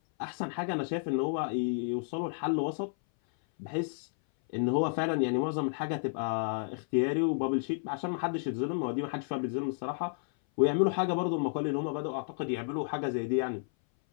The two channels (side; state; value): right; silent; 57 dB below the other